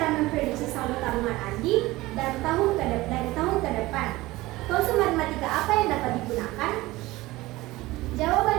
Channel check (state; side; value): quieter; left; 19.1 dB